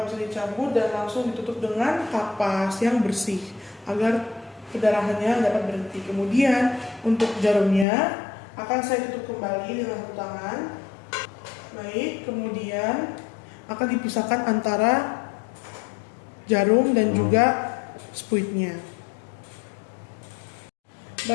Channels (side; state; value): right; drops out; at 7.9 s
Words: bisa dicabut dan langsung ditutup dengan kapas yang bersih agar pendarahannya dapat berhenti. Kemudian untuk jarumnya akan saya tutup kembali dengan satu tangan. Baik, kemudian akan dipisahkan antara jarum dan juga spuitnya.